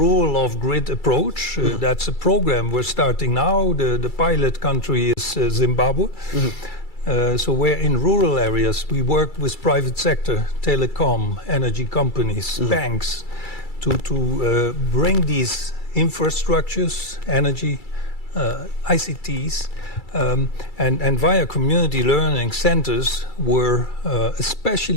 of grid approach. That's a program we're starting now. The pilot country is Zimbabwe. So where in rural areas we work with private sector, telecom, energy companies, banks, to bring these infrastructures, energy, ICTs, and via community learning centers, we're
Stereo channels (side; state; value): right; late; 2.3 ms